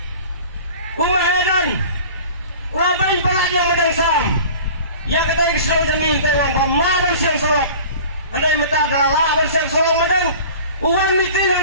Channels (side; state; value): both; inverted; correlation -0.42